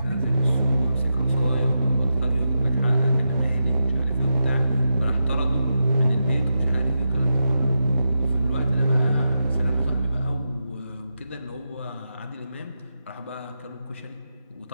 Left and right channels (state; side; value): inverted; both; correlation -0.87